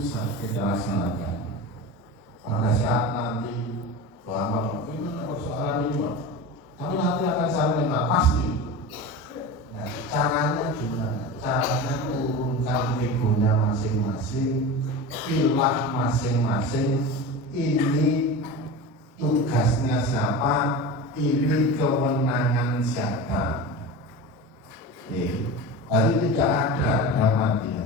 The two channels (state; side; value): normal; both; correlation 0.29